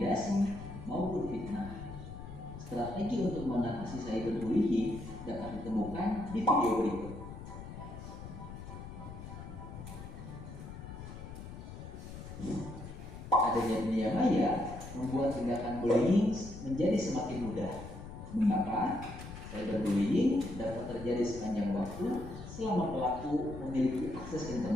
maupun fitnah. Strategi untuk mengatasi cyberbullying dapat ditemukan di video berikut. Adanya dunia maya membuat tindakan bullying menjadi semakin mudah. Mengapa? Cyberbullying dapat terjadi sepanjang waktu selama pelaku memiliki akses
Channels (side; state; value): left; noise; rumble, 11 dB below the sound